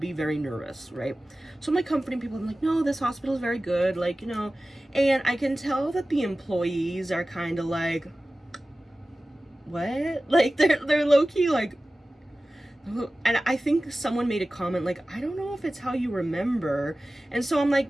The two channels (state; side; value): normal; both; correlation 0.96